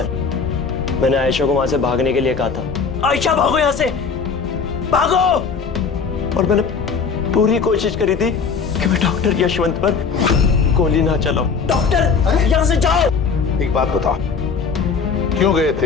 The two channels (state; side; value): quieter; right; 5.5 dB